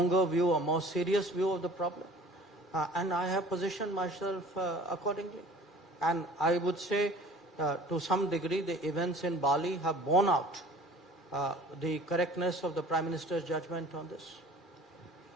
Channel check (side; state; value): both; normal; correlation 0.47